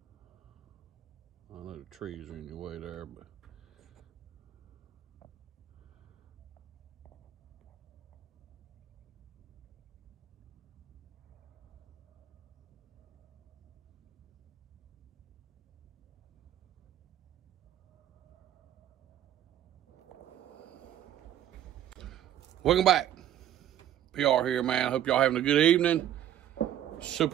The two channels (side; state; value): left; quieter; 11.3 dB